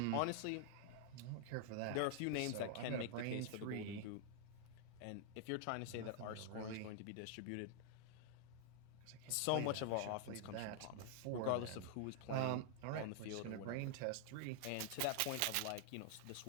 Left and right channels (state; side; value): different; both; correlation -0.01